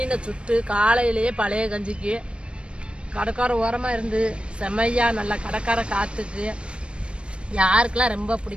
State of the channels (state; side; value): late; left; 0.058 ms